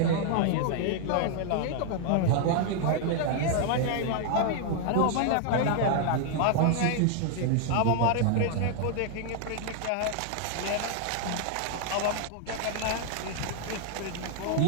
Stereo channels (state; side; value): different; both; correlation 0.00